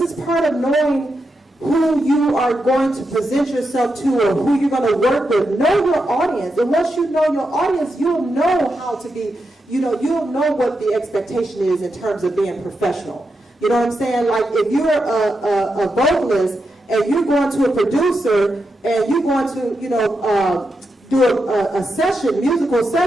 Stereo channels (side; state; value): both; normal; correlation 0.86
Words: is part of knowing who you are going to present yourself to or who you're going to work with. Know your audience. And once you know your audience, you'll know how to be, you'll know what the expectation is in terms of being professional. You know what I'm saying? Like if you're a vocalist and you're going to a producer and you're going to, do a session, musical